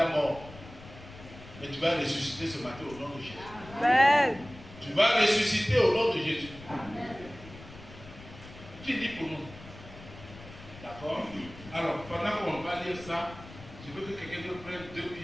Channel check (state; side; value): noise; left; rumble, 17 dB below the sound